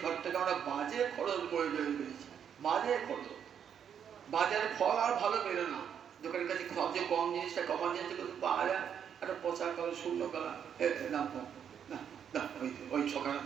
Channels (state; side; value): quieter; left; 8.3 dB